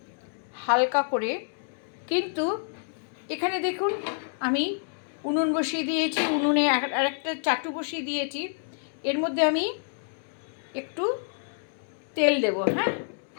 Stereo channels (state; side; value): silent; right; digital silence